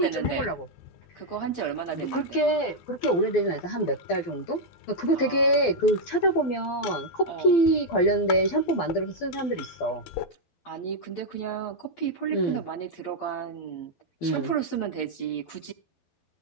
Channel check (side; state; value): right; late; 12 ms